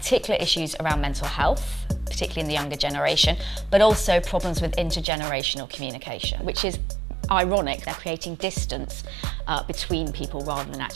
issues around mental health, particularly in the younger generation, but also problems with intergenerational communication, which is ironic. They're creating distance between people rather than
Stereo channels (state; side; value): drops out; left; at 5.1 s